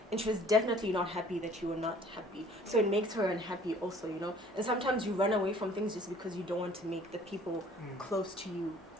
and she was definitely not happy that you were not happy. So it makes her unhappy also, you know. And sometimes you run away from things just because you don't want to make the people close to you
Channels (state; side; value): normal; both; correlation 0.54